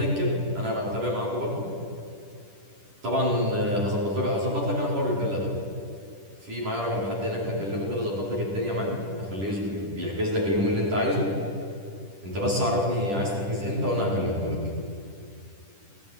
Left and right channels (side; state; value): left; late; 10 ms